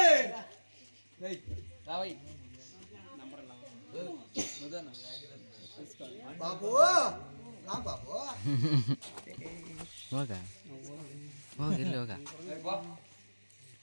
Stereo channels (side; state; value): both; inverted; correlation -1.00